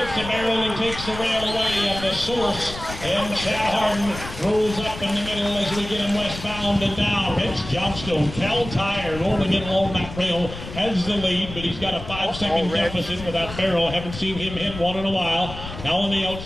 the barrel and takes the rail away, and the Source And Chad Harden rolls up in the middle as we get him westbound and down. It's Johnstone. Cal Tire rolling in along that rail has the lead, but he's got a 5-second deficit with that barrel. Haven't seen him hit one in a while. Now on the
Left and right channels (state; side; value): noise; left; rumble, 11 dB below the sound